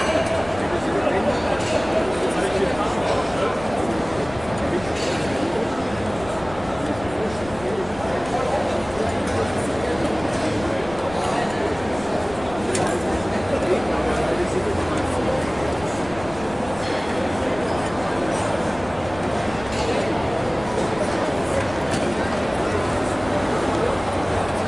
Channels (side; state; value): left; noise; rumble, 16 dB below the sound